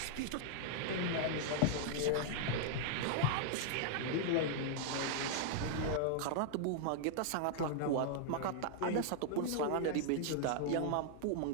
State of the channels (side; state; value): both; different; correlation -0.01